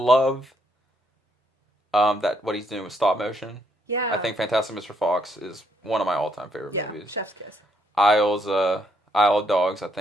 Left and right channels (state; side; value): normal; both; correlation 0.73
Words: that what he's doing with stop motion. Yeah. I think Fantastic Mr. Fox is one of my all-time favorite movies. Chef's Kiss. Isle of Dogs, I